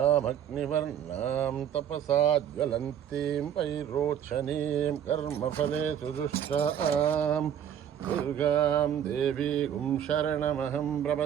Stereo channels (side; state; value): left; quieter; 9.5 dB